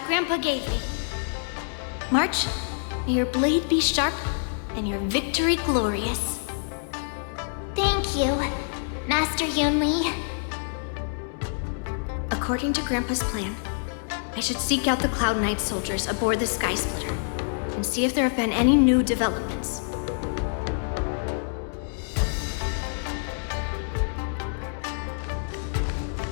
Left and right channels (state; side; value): silent; right; 61 dB below the other